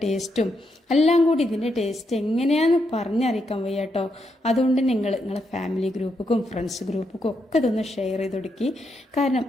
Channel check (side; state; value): both; normal; correlation 0.80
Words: ടേസ്റ്റും എല്ലാം കൂടി ഇതിൻ്റെ ടേസ്റ്റ് എങ്ങനെയാണെന്ന് പറഞ്ഞറിയിക്കാൻ വയ്യ കേട്ടോ. അതുകൊണ്ട് നിങ്ങളെ ഫാമിലി ഗ്രൂപ്പുക്കും ഫ്രണ്ട്സ് ഗ്രൂപ്പുക്കും ഒക്കെ ഇതൊന്ന് ഷെയർ ചെയ്ത് കൊടുക്കി. കാരണം